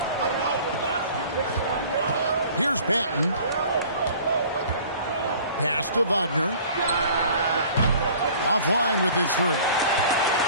Here's Banton. Pass to Wagner. Offline with his three.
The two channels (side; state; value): both; inverted; correlation -0.49